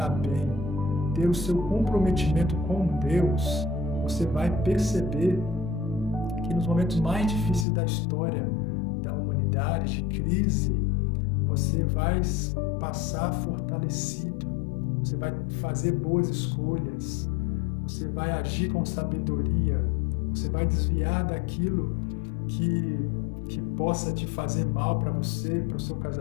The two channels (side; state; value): right; drops out; at 7.7 s